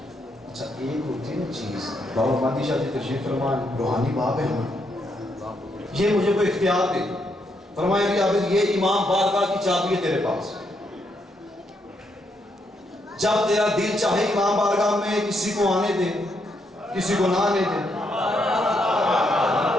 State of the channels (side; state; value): both; normal; correlation 0.77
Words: اچھا ایک ہوتی ہے نا چیز بابا مہدی شاہ جی تشریف فرمان روحانی باپ ہے ہمارے, یہ مجھے کوئی اختیار دے فرمایا بھی عابد یہ امام بارگاہ کی چابی ہے تیرے پاس, جب تیرا دل چاہے امام بارگاہ میں کسی کو آنے دے کسی کو نہ آنے دے.